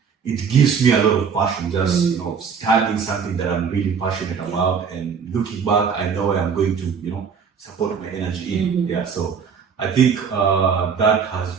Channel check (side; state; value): left; quieter; 6.4 dB